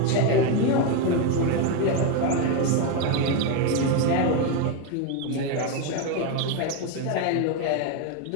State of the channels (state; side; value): different; both; correlation 0.03